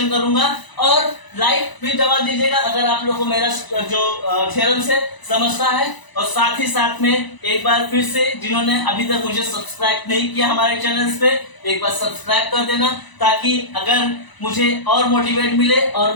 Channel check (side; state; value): right; late; 1.0 ms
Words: करूंगा। और लाइक भी दबा दीजिएगा अगर आप लोग को मेरा जो थ्योरम से समझता है। और साथ ही साथ में एक बार फिर से जिन्होंने अभी तक मुझे सब्सक्राइब नहीं किया हमारे चैनल्स पे, एक बार सब्सक्राइब कर देना, ताकि अगर मुझे और मोटिवेट मिले और